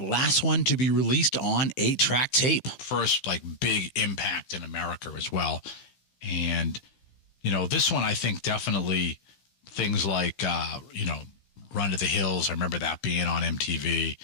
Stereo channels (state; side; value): late; right; 15 ms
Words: one to be released on 8-track tape. First, big impact in America as well. And, this one, I think definitely things like, Run to the Hills. I remember that being on MTV.